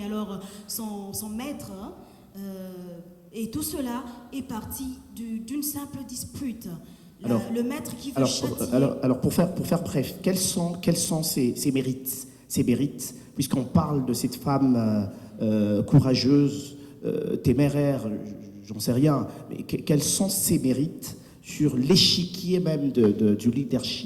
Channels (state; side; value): identical; both; correlation 1.00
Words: alors son maître. Hein, et tout cela est parti d'une simple dispute. Le maître qui veut châtier... Alors pour faire bref, quels sont ses mérites, puisqu'on parle de cette femme courageuse, téméraire, j'en sais rien, mais quels sont ses mérites sur l'échiquier même du